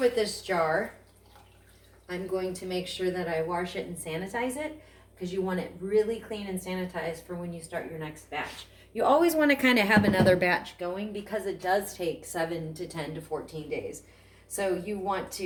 this jar, I'm going to make sure that I wash it and sanitize it because you want it really clean and sanitized for when you start your next batch. You always want to kind of have another batch going because it does take 7 to 10 to 14 days. So you want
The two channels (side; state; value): both; identical; correlation 1.00